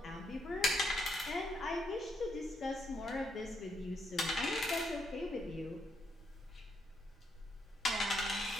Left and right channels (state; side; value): normal; both; correlation 0.77